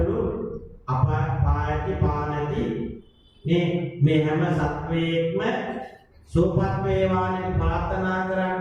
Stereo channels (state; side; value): identical; both; correlation 1.00